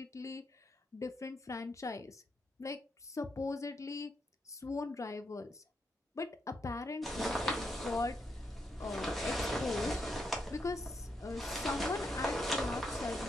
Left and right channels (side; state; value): both; normal; correlation 0.81